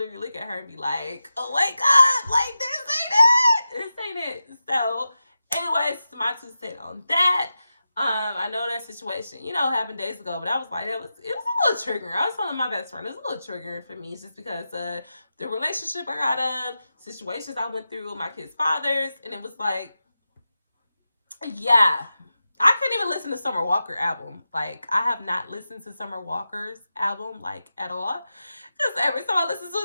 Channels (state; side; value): inverted; both; correlation -0.91